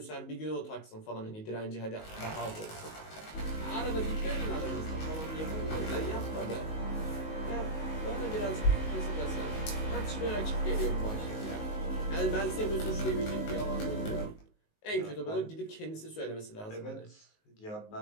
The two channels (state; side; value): late; right; 19 ms